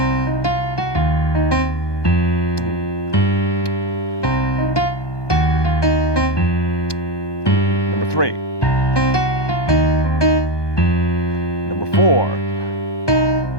Number 3. Number 4.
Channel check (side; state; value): right; late; 1.2 ms